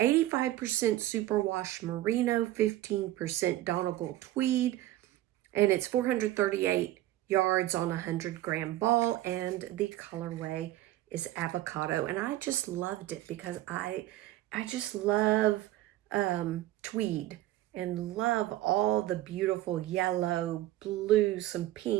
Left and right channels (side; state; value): left; quieter; 15.2 dB